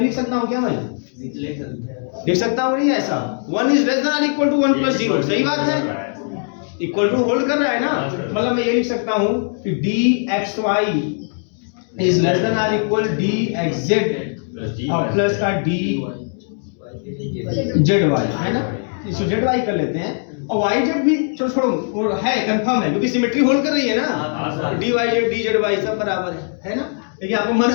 लिख सकता हूँ क्या मैं? लिख सकता हूँ नहीं ऐसा, 1 इज लेस देन और इक्वल टू 1 प्लस 0, सही बात है, इक्वल टू होल्ड कर रहा है ना, मतलब मैं ये लिख सकता हूँ कि dxy इज लेस देन और इक्वल dxz और प्लस का dzy, है ना, इसको zy कर लेते हैं, और yz भी छोड़ो है, कंफर्म है, क्योंकि सिमेट्री होल्ड कर रही है ना, dyz dzy सब बराबर है ना। लेकिन आपको मन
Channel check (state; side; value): silent; right; 60 dB below the other